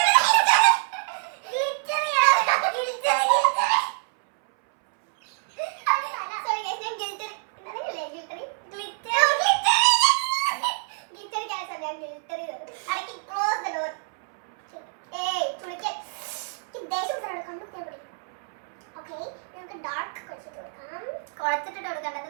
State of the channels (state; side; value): silent; left; 61 dB below the other